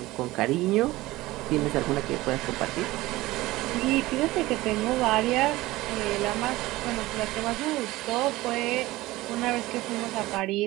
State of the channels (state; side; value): quieter; left; 18.6 dB